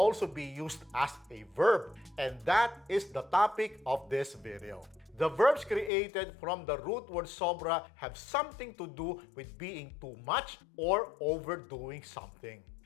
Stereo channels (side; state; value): right; drops out; at 5.9 s